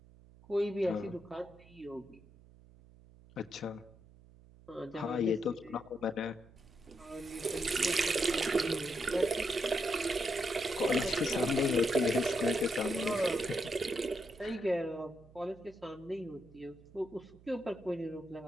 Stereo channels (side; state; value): right; noise; hum, 24 dB below the sound